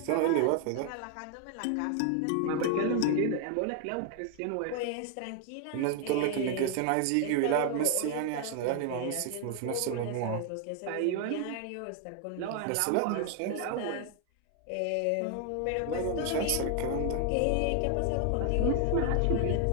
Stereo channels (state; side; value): different; both; correlation 0.00